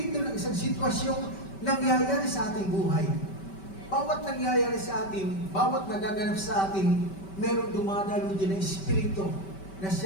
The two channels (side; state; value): right; late; 5.2 ms